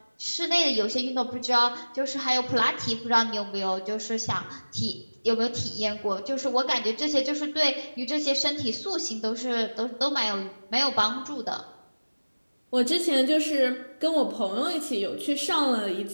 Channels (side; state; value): both; inverted; correlation -1.00